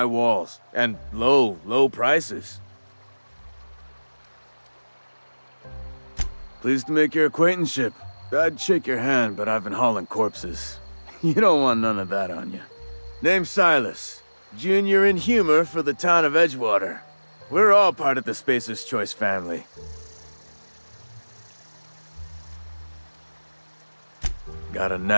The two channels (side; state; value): both; inverted; correlation -1.00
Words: walls. And low prices. Pleased to make your acquaintanceship. I'd shake your hand, but I've been hauling corpses. You don't want none of that on you. Name's Silas. Junior in humor for the town of Edgewater. We're all part of the Spacer's Choice family. Got a